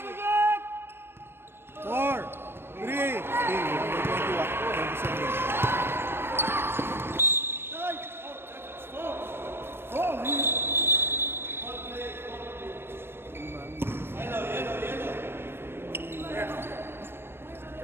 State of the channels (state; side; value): late; left; 0.11 ms